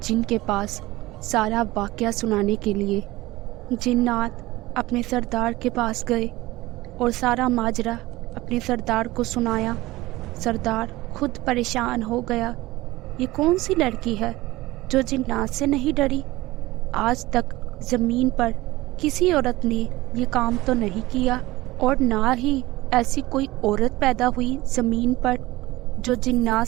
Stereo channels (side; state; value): left; quieter; 18.8 dB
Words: جن کے پاس سارا واقعہ سنانے کے لیے۔ جنات اپنے سردار کے پاس گئے اور سارا ماجرا اپنے سردار کو سنایا۔ سردار خود پریشان ہو گیا، یہ کون سی لڑکی ہے جو جنات سے نہیں ڈری؟ آج تک زمین پر کسی عورت نے یہ کام تو نہیں کیا، اور نہ ہی ایسی کوئی عورت پیدا ہوئی زمین پر جو